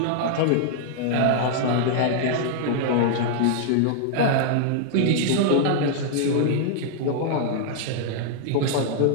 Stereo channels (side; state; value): both; different; correlation -0.01